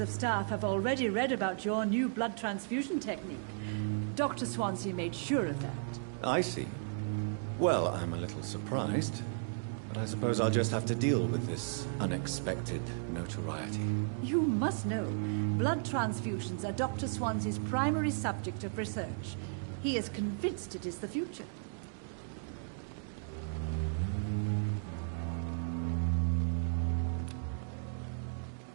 staff have already read about your new blood transfusion technique. Dr. Swansea made sure of that. I see. Well, I'm a little surprised, but I suppose I'll just have to deal with this unexpected notoriety. You must know, blood transfusions are Dr. Swansea's primary subject of research. He is convinced it is the future.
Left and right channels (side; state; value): left; silent; digital silence